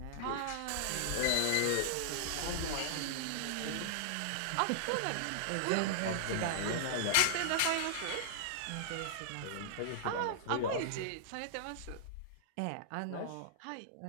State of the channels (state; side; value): different; both; correlation -0.01